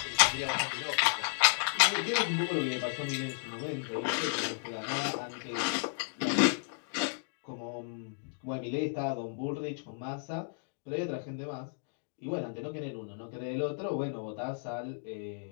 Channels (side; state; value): right; silent; digital silence